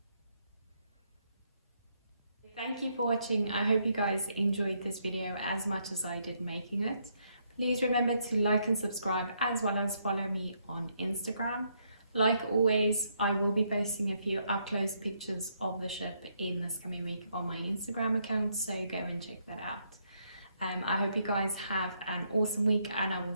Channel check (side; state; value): both; inverted; correlation -0.74